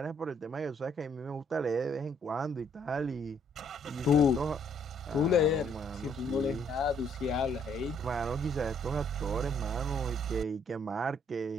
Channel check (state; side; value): normal; both; correlation 0.67